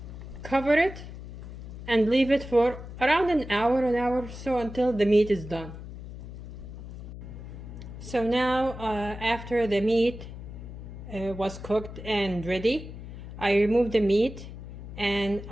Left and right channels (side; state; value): left; noise; hum, 12 dB below the sound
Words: cover it, and leave it for around an hour or so until the meat is done. So now after the meat was cooked and ready, I removed the meat and